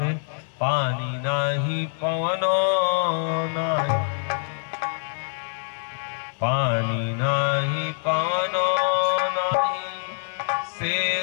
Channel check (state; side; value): silent; right; digital silence